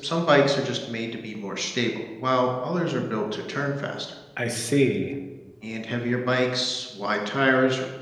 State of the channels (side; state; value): both; identical; correlation 1.00